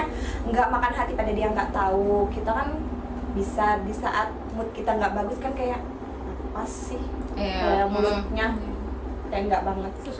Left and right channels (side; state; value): both; identical; correlation 1.00